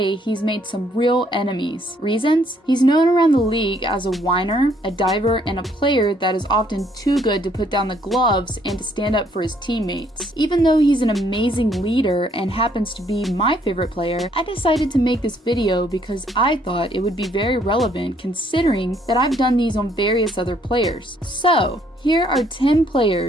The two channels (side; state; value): both; normal; correlation 0.67